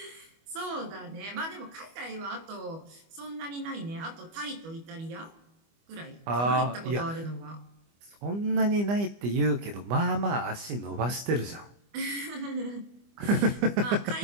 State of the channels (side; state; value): left; late; 25 ms